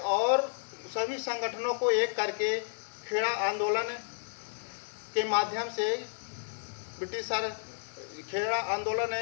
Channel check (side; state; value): right; silent; digital silence